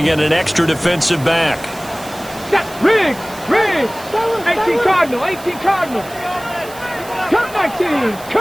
in an extra defensive back. Rig! 18 Cardinal, 18 Cardinal. Cup 19,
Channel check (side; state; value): right; noise; hiss, 18 dB below the sound